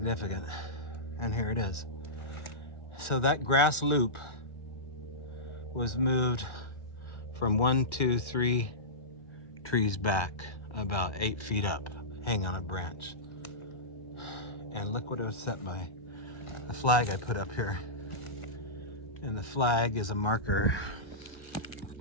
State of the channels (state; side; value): late; right; 1.4 ms